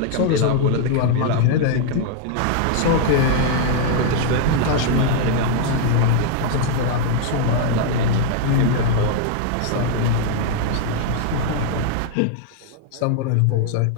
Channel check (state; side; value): different; both; correlation 0.00